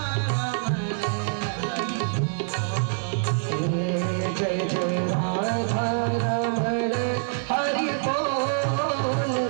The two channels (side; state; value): left; silent; 61 dB below the other